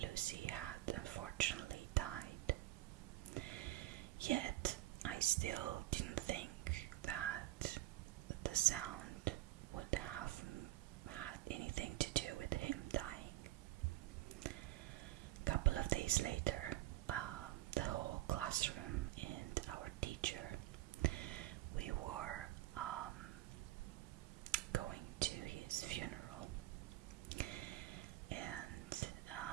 Luci had unfortunately died. Yet, I still didn't think that the sound would have had anything to do with him dying. A couple of days later, the whole classroom and our teacher, we were going to his funeral, and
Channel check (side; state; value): left; quieter; 16.1 dB